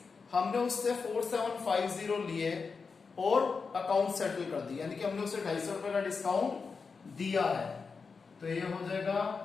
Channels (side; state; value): right; quieter; 5.0 dB